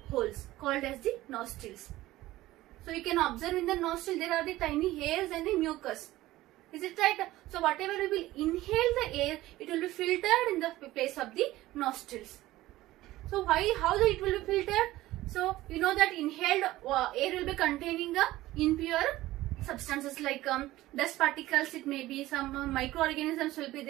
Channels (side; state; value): left; quieter; 16.6 dB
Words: holes called as the nostrils. So you can observe in the nostril there are the tiny hairs and the mucus. Is it right? So whatever we will inhale the air, it will be filtered in the place of the nostrils. So how it will be filtered? So you know that inhaled air will be containing impure substances like dust particles, it may be some microorganisms will be